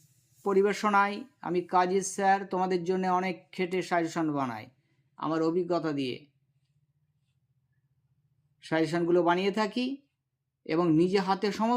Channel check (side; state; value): both; identical; correlation 1.00